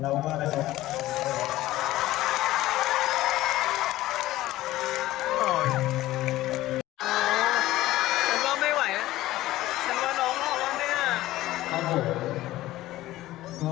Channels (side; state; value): right; quieter; 16.1 dB